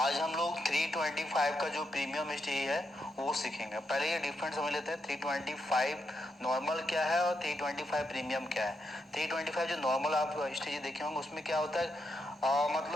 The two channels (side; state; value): both; normal; correlation 0.83